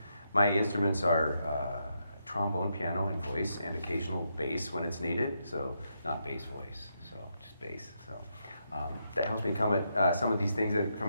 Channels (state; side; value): inverted; both; correlation -0.81